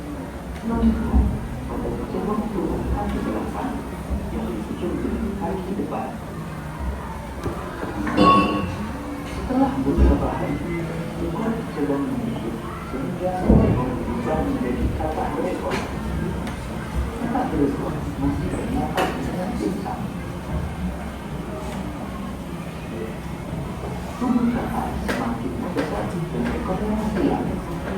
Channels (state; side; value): identical; both; correlation 1.00